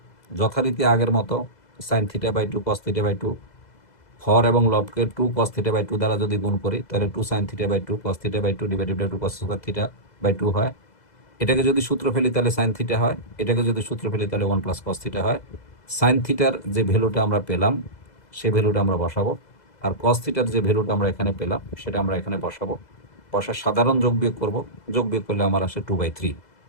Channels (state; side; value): late; right; 2.0 ms